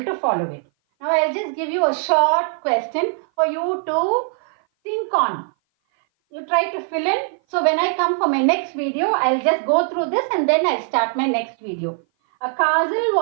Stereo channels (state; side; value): silent; left; 57 dB below the other